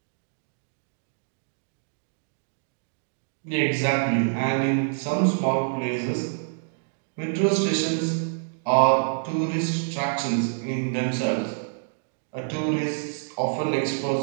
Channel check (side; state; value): left; silent; digital silence